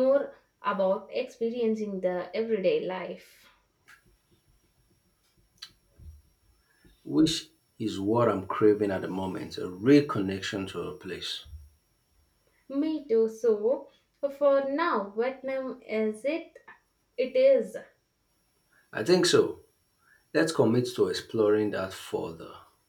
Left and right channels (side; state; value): both; identical; correlation 1.00